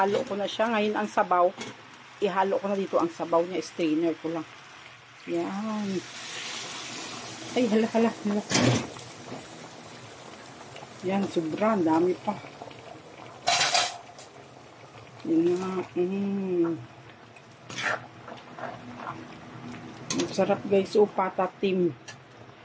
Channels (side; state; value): both; identical; correlation 1.00